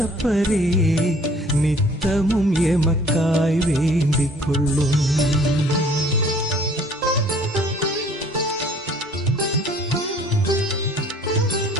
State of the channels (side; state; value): both; normal; correlation 0.55